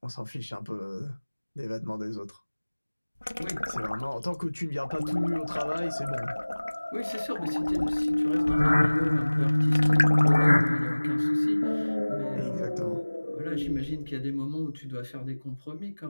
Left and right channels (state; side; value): inverted; both; correlation -1.00